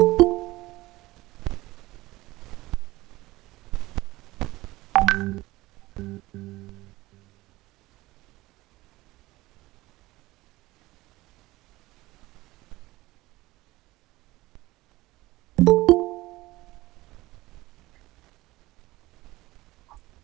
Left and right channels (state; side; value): quieter; left; 19.0 dB